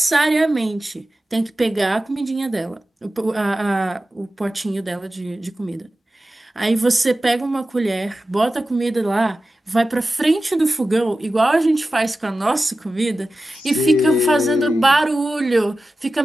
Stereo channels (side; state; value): both; normal; correlation 0.94